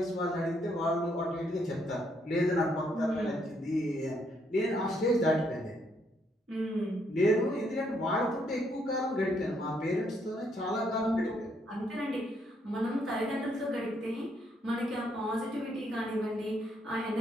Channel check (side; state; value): both; normal; correlation 0.73